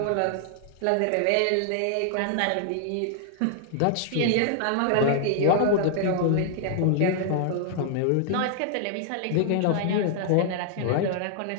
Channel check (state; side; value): different; both; correlation -0.01